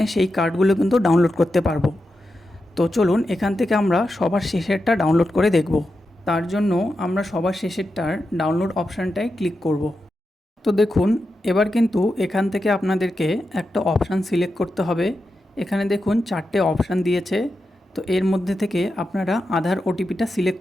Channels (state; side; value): normal; both; correlation 0.89